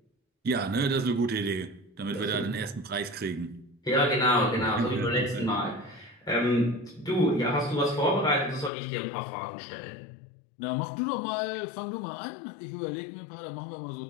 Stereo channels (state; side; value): drops out; right; at 8.7 s